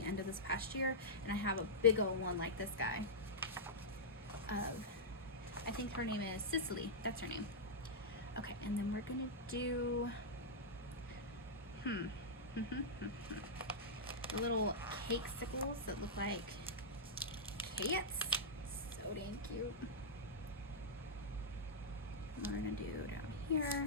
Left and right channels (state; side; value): normal; both; correlation -0.09